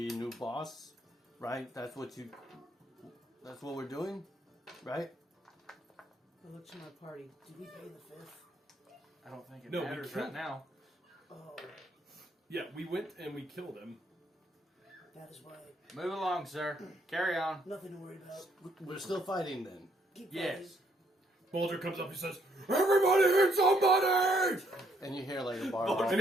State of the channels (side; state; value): both; normal; correlation 0.70